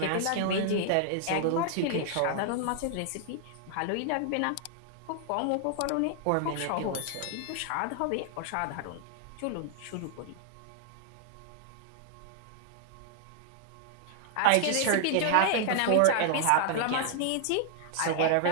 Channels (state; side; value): different; both; correlation -0.01